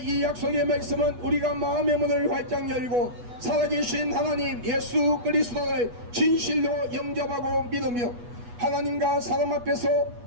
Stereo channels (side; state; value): left; late; 8.2 ms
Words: 이 약속의 말씀은 우리가 마음의 문을 활짝 열고 살아계신 하나님 예수 그리스도를 진실로 영접하고 믿으며 하나님과 사람 앞에서